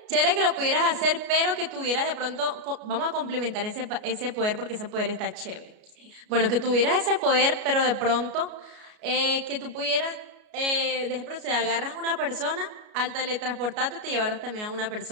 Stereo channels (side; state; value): left; late; 33 ms